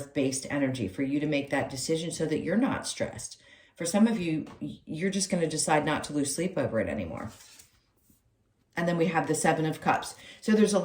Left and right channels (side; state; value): both; identical; correlation 1.00